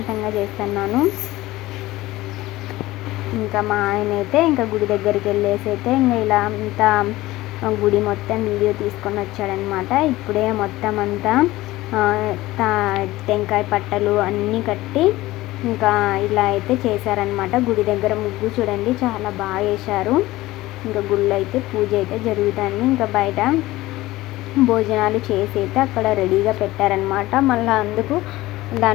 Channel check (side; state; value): right; quieter; 17.9 dB